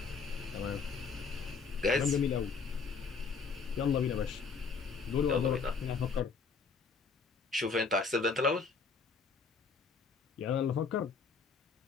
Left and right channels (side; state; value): right; quieter; 5.0 dB